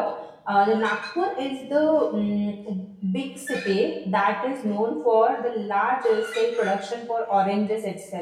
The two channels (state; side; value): identical; both; correlation 1.00